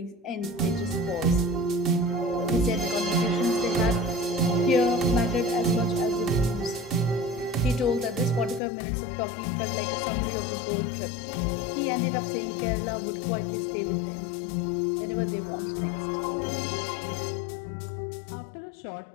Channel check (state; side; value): drops out; right; at 8.6 s